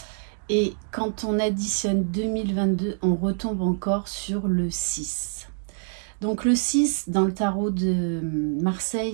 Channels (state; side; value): silent; left; 61 dB below the other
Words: et quand on additionne 2022, on retombe encore sur le 6. Donc le 6, dans le tarot de